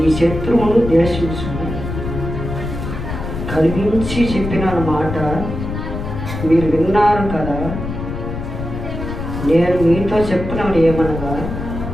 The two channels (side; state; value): left; noise; rumble, 6 dB below the sound